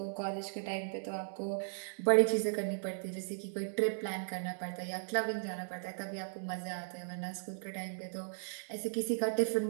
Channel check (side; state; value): left; silent; digital silence